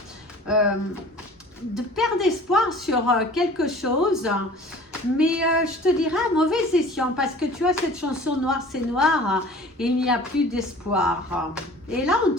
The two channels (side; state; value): both; normal; correlation 0.45